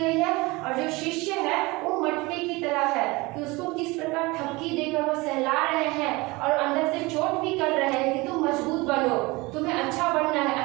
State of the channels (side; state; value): left; quieter; 23.4 dB